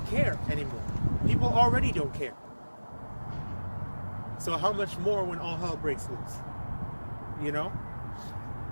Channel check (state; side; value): inverted; both; correlation -1.00